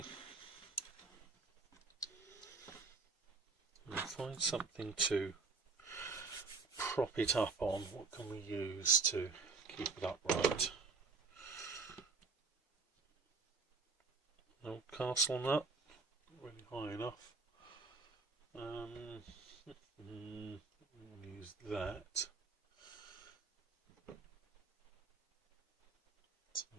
We'll find something to prop it up on. What can we use to keep it upright? No castle nut, not really high enough. We'll use that.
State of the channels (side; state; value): left; quieter; 4.2 dB